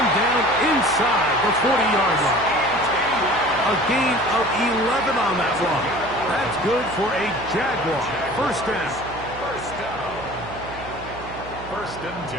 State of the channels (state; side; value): noise; right; hum, 14 dB below the sound